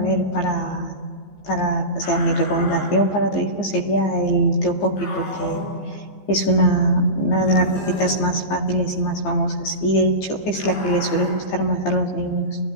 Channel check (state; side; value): late; right; 15 ms